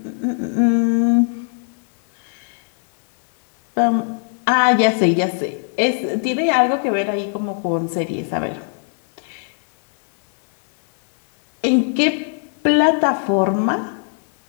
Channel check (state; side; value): silent; right; 57 dB below the other